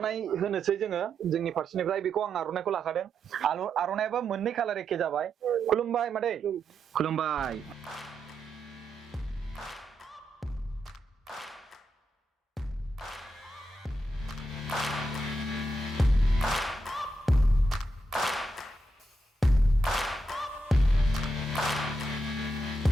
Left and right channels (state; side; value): normal; both; correlation 0.83